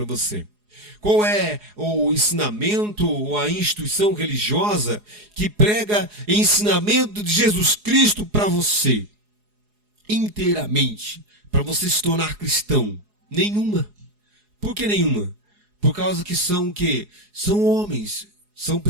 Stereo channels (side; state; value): left; late; 4.8 ms